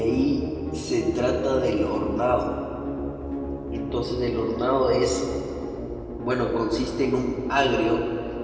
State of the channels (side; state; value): both; identical; correlation 1.00